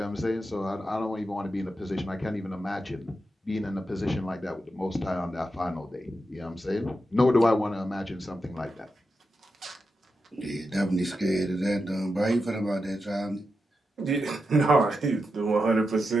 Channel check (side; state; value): both; normal; correlation 0.88